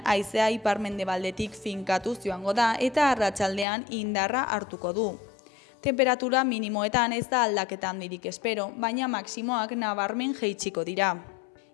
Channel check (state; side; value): drops out; right; at 3.7 s